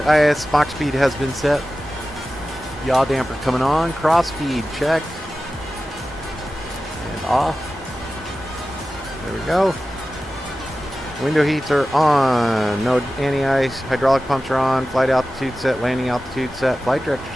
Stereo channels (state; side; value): normal; both; correlation 0.95